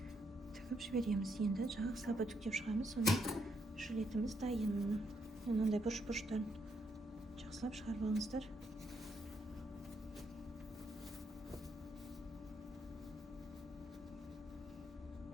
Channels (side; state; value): both; normal; correlation 0.76